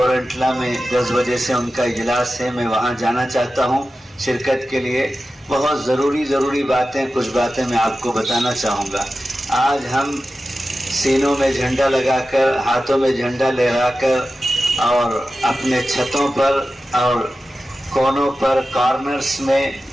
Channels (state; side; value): normal; both; correlation 0.93